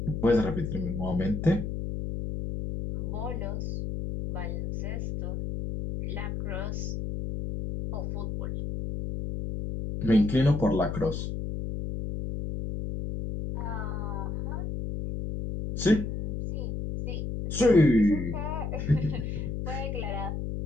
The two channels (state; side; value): noise; left; hum, 4 dB below the sound